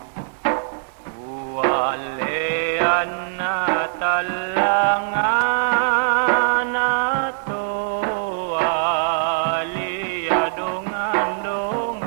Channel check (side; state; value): left; silent; digital silence